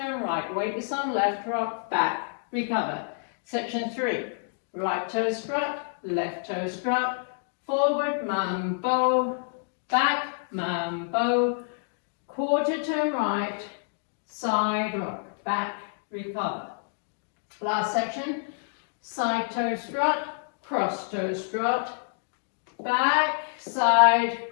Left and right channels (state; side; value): silent; right; digital silence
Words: right, weightless on left, rock, back, recover. Section 3, right toe strut, left toe strut, forward, mambo, back, mambo, quarter turn right, side rock, back, recover. Last section, side toe strut, cross toe strut, back, side,